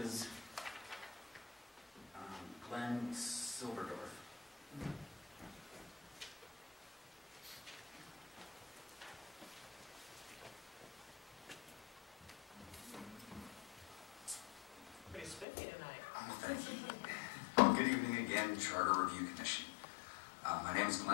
Glenn Silverdorf. Pretty spiffy tonight. Thank you. Good evening again, Charter Review Commission. My name is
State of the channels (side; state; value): right; drops out; at 15.5 s